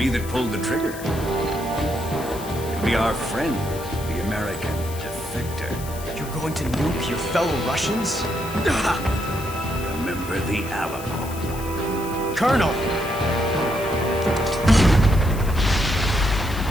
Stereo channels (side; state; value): left; noise; hiss, 14 dB below the sound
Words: that pulled the trigger. It'll be our friend, the American defector. You're going to nuke your fellow Russians? Remember the Alamo. Colonel!